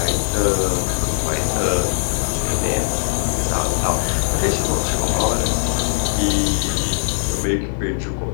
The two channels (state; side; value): silent; right; 61 dB below the other